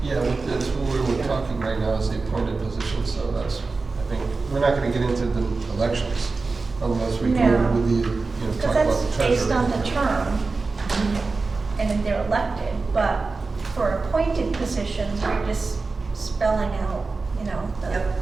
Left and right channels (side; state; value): left; quieter; 4.0 dB